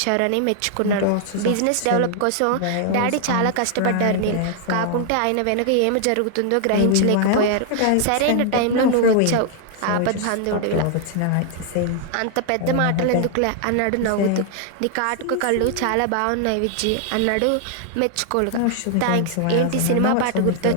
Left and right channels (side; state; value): both; different; correlation 0.00